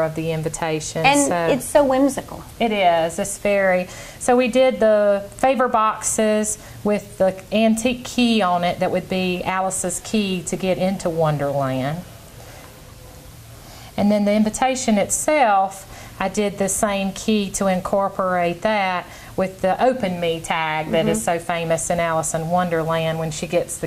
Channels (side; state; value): both; identical; correlation 1.00